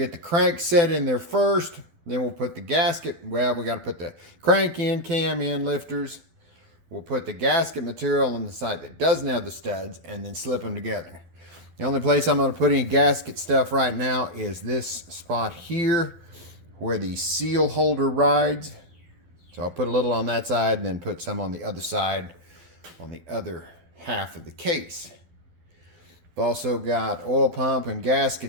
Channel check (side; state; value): left; late; 12 ms